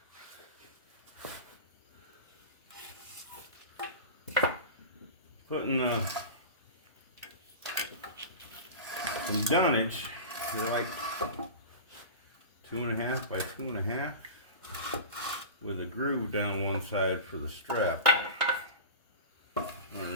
Putting some dunnage, they're like 2.5 by 2.5, with a groove down one side for the strap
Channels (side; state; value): both; inverted; correlation -0.31